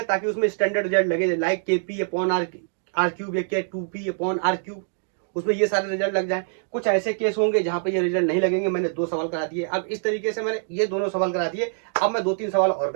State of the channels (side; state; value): left; silent; digital silence